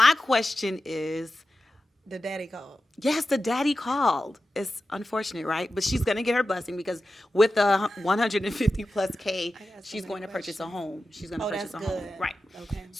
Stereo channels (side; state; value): both; normal; correlation 0.93